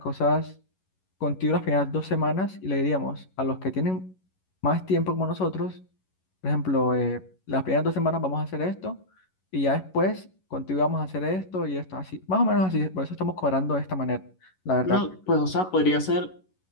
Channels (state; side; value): late; right; 11 ms